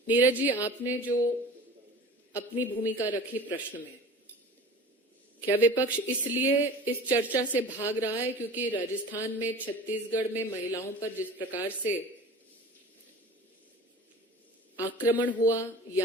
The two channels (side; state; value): both; normal; correlation 0.40